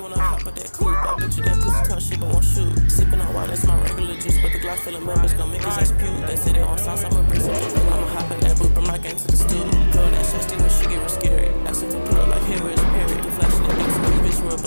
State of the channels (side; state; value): both; inverted; correlation -1.00